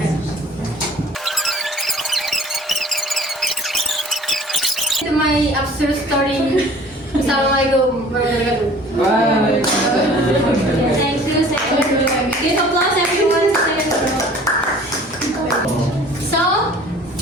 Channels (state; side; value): normal; both; correlation 0.48